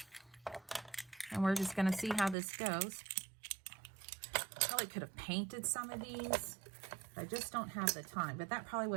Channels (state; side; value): drops out; left; at 2.4 s